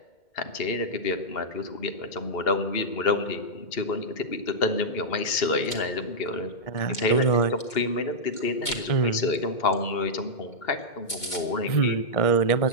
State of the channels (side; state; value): right; late; 2.1 ms